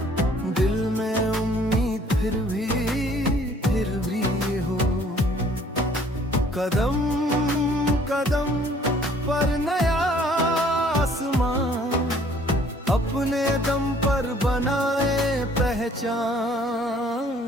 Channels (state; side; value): normal; both; correlation 0.58